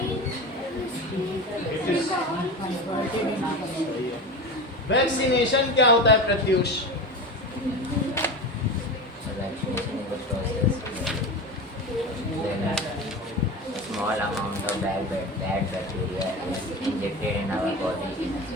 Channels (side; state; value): both; normal; correlation 0.27